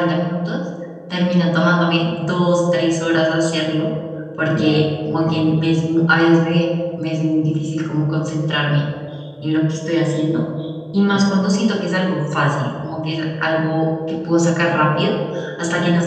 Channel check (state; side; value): identical; both; correlation 1.00